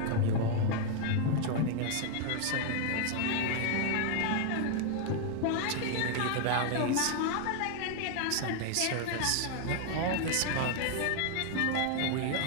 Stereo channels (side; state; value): both; different; correlation 0.00